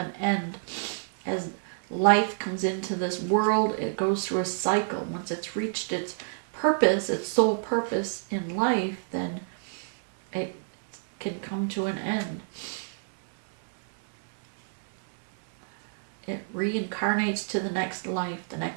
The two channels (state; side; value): silent; left; digital silence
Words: end. As life comes into this world, it goes through a cycle. Once it's reached its purpose, its sole purpose in life, then it can come to an end. It reincarnates to the next life, the